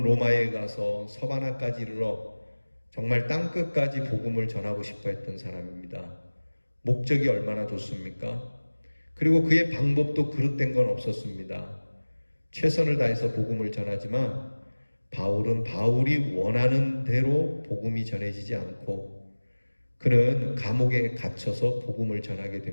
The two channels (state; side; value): inverted; both; correlation -1.00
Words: 로마에 가서 서바나까지 이르러 정말 땅끝까지 복음을 전하고 싶어 했던 사람입니다. 목적이 얼마나 좋습니까? 그리고 그의 방법도 그릇된 건 없었습니다. 최선을 다해서 복음을 전하지만 바울은 바울이 원하는 대로 복음이 전해지지 않고 그는 감옥에 갇혀서 복음을 전하게